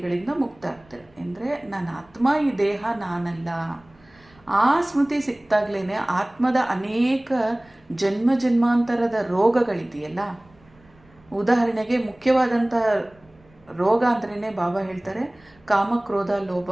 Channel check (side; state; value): right; noise; rumble, 30 dB below the sound